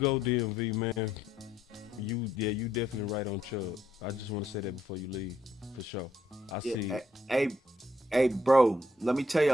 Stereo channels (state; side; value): normal; both; correlation 0.73